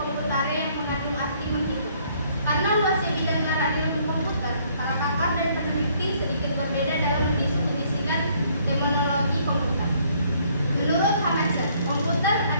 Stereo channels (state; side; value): inverted; both; correlation -0.64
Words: yang mengandung arti menghitung. Karena luasnya bidang arah ilmu komputer, para pakar dan peneliti sedikit berbeda dalam mendefinisikan terminologi komputer. Menurut Hanacher, komputer